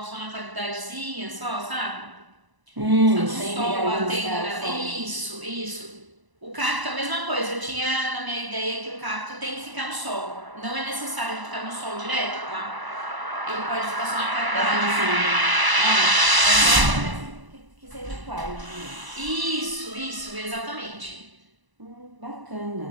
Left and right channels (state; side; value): late; left; 1.0 ms